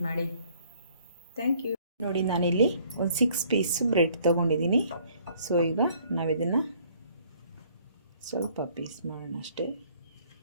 ಮಾಡಿ. Thank you. ನೋಡಿ, ನಾನಿಲ್ಲಿ ಒಂದು 6 ಪೀಸು ಬ್ರೆಡ್ ತೊಗೊಂಡಿದ್ದೀನಿ. ಸೊ ಈಗ ನಾವಿದನ್ನು ಸ್ವಲ್ಪ ಪೀಸ್ ಮಾಡೋಣ ಅಷ್ಟೇ.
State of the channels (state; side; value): inverted; both; correlation -0.60